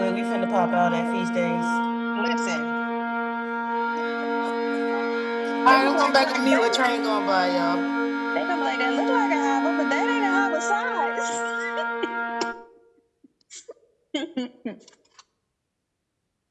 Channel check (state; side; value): identical; both; correlation 1.00